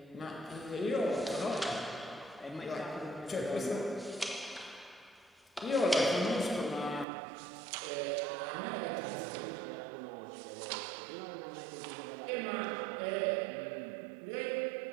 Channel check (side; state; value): left; drops out; at 7.1 s